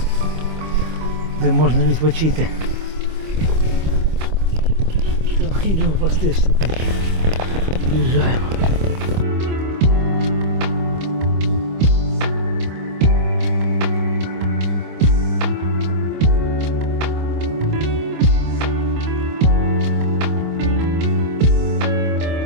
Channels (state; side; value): late; left; 25 ms